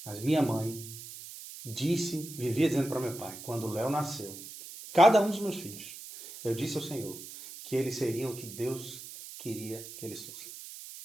Mas minha mãe vivia dizendo para meu pai, quando o Léo nasceu, cada um dos meus filhos, eu disse ao Senhor que eles seriam o que Deus queria que eles fossem.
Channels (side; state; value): right; noise; hiss, 13 dB below the sound